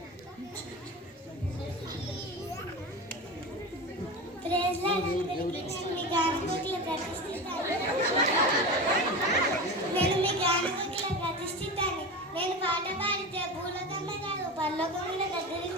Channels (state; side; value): normal; both; correlation 0.26